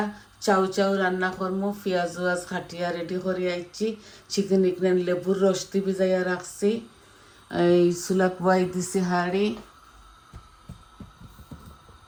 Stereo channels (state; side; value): identical; both; correlation 1.00